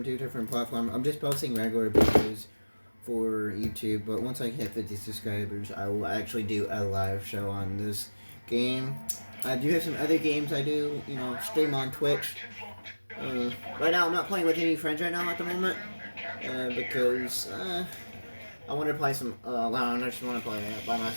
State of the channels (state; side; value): inverted; both; correlation -1.00